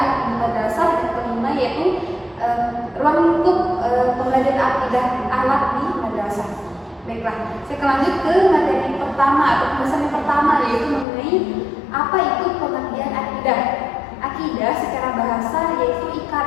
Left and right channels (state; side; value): drops out; right; at 11.1 s